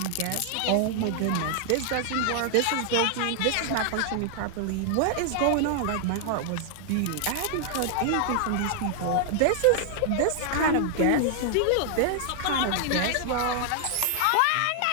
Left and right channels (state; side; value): different; both; correlation 0.00